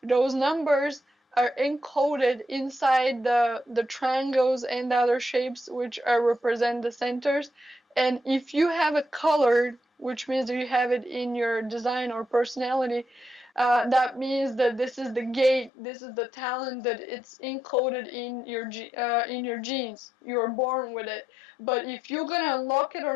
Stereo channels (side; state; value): right; drops out; at 15.7 s